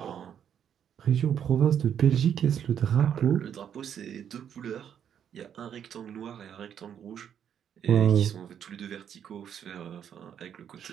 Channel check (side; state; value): left; quieter; 8.8 dB